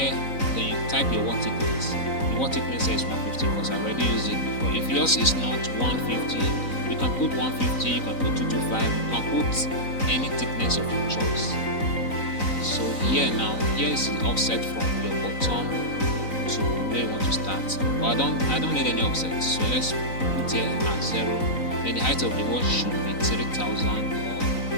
then you type your wall thickness. The wall thickness is 150 because I already used it before. If yours is not 150, you can put 150, you can put 225, you can put any thickness of your choice. So here is the offset from your bottom to where you want to start. But I don't need any offset, so let's put here at 0. Then the height of the wall should be 3000 or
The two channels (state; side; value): late; right; 3.9 ms